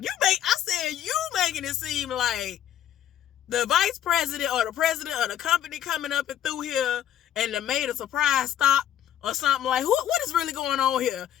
I said, you making it seem like the vice president or the president of the company coming up and through here and they made a surprise stop or something. Like, what is really going on here?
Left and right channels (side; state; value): right; quieter; 10.7 dB